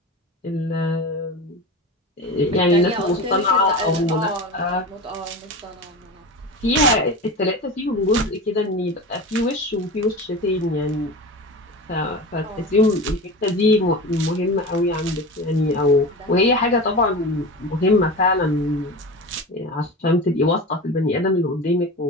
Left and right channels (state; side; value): normal; both; correlation 0.29